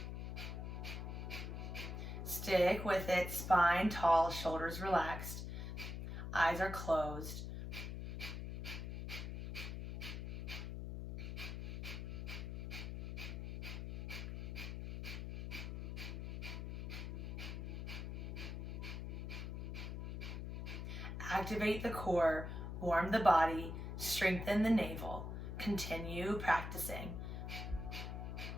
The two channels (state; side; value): noise; left; hum, 5 dB below the sound